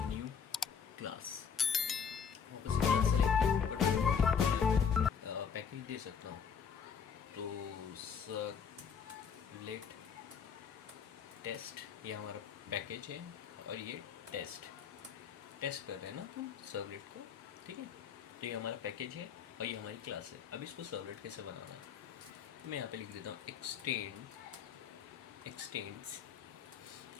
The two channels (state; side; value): quieter; right; 6.8 dB